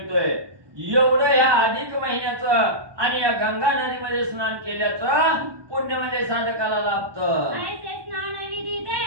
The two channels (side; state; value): left; late; 1.2 ms